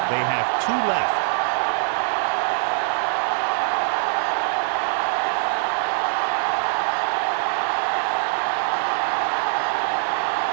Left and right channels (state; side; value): silent; left; digital silence